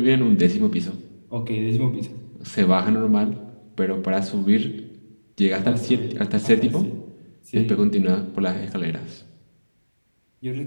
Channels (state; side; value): inverted; both; correlation -1.00